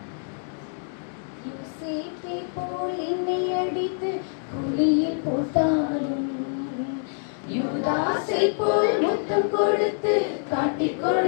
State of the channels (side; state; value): right; silent; digital silence